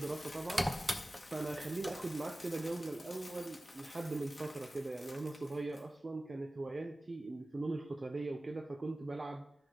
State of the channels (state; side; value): normal; both; correlation 0.97